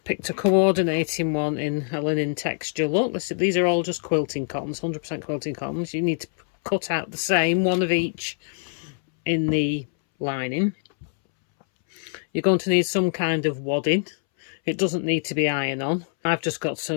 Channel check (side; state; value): right; silent; 62 dB below the other